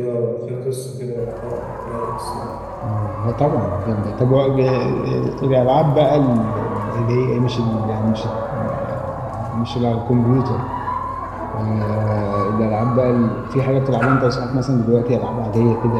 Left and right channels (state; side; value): identical; both; correlation 1.00